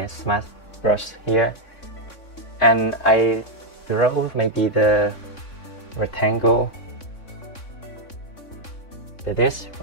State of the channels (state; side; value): late; right; 3.6 ms